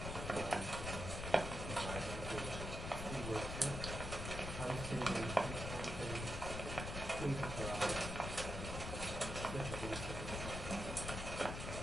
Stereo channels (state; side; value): noise; left; rumble, 5 dB below the sound